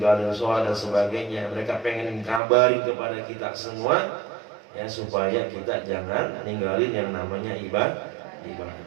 sholat dan sebagainya. Mereka pengen kabarin kepada kita semua ya supaya kita jangan ninggalin yang namanya ibadah.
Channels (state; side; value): drops out; left; at 2.4 s